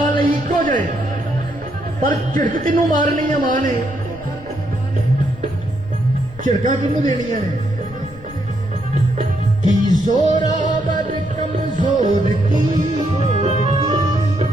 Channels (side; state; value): left; noise; rumble, 18 dB below the sound